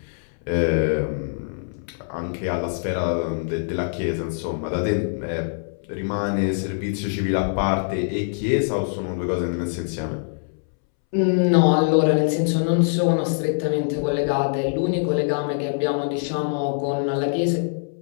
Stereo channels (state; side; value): silent; right; 63 dB below the other